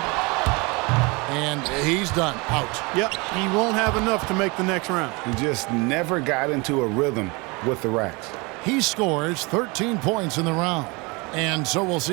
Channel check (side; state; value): left; quieter; 27.0 dB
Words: And he's done. Out. Yep, he won't have enough to make the next round. He just never got into a rhythm with the racks. He scores 13 points in the round. And so we'll